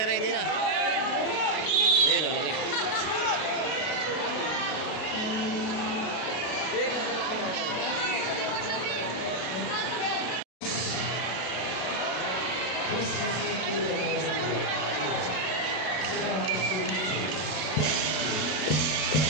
na. Yun o, okay.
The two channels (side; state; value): right; late; 32 ms